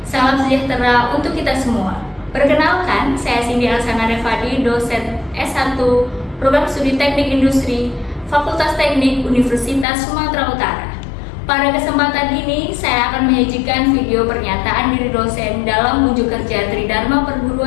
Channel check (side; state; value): right; drops out; at 9.9 s